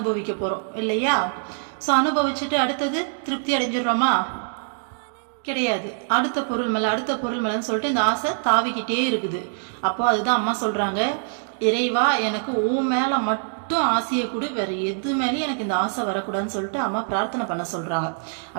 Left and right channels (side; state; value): left; silent; digital silence